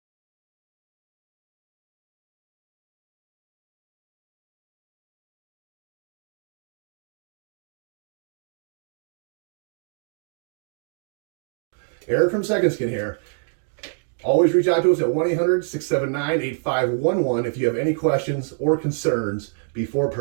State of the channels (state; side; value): silent; left; digital silence